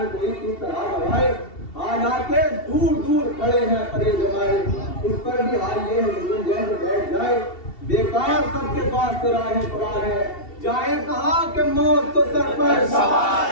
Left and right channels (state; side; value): late; right; 2.7 ms